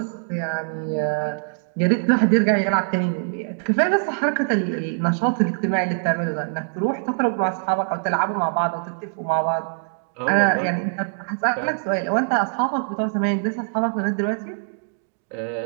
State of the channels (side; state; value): left; silent; digital silence